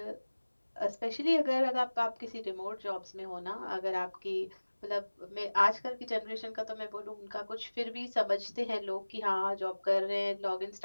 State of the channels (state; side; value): inverted; both; correlation -1.00